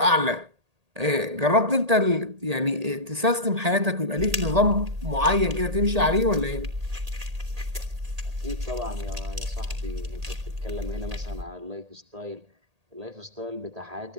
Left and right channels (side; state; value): left; late; 1.8 ms